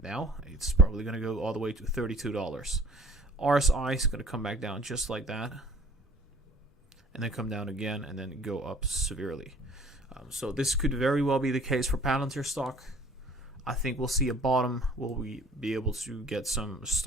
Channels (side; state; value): both; normal; correlation 0.50